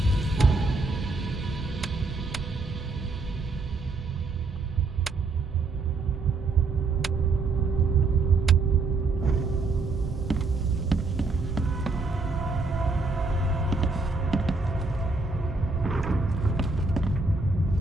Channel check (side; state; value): left; quieter; 3.8 dB